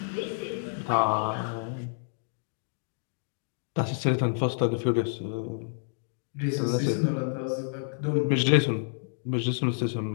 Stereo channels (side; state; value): right; silent; digital silence